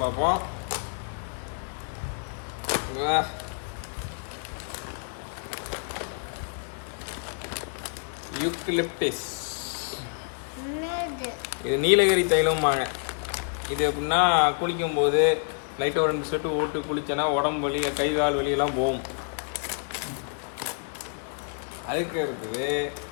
பார்ப்போம். யூக்கலிப்டஸ், இது நீலகிரி தைலம்பாங்க. இது எப்படின்னா குளிக்கும் போது லைட்டாக ஒரு 2 செட்டு ஓட்டு குளிச்சேன்னா உடம்பு வலி, கை கால் வலியெல்லாம் போகும். அதுக்கு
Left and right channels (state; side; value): silent; right; 59 dB below the other